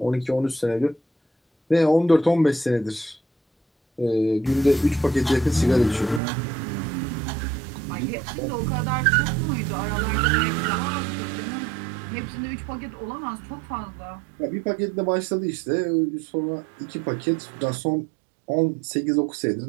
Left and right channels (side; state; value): left; drops out; at 6.2 s